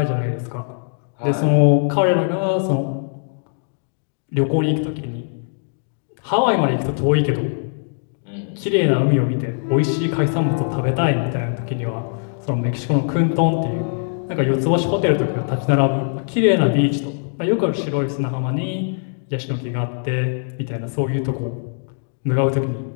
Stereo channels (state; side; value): silent; right; digital silence